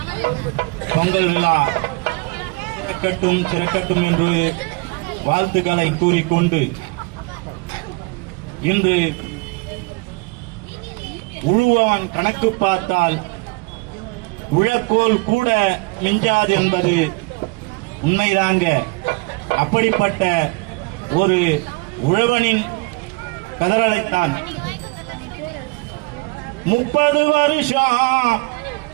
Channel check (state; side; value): quieter; left; 27.8 dB